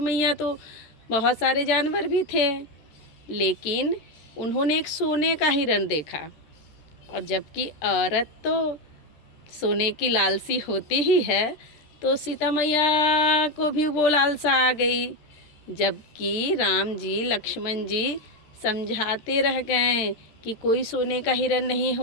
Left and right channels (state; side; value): late; right; 13 ms